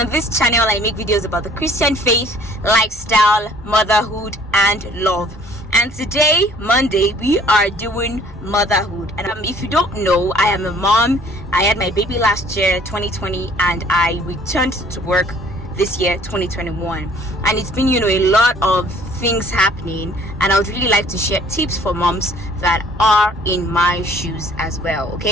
this channel, I make videos about the Christian faith, lifestyle, motherhood, and love. And today, Monday, we are doing motherhood. And if you don't know, I am a mom. I had my baby last year, 2020, and I returned to work this year, 2021. And it's been, a lot of things happening. And I would really like to share tips for moms that are in my shoes as well,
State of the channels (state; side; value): normal; both; correlation 0.56